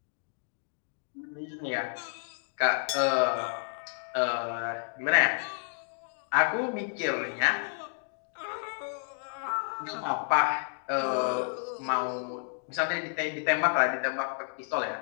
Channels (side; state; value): right; silent; 57 dB below the other